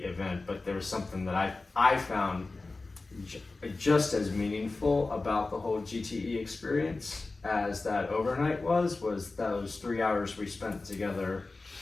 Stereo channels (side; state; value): right; quieter; 3.5 dB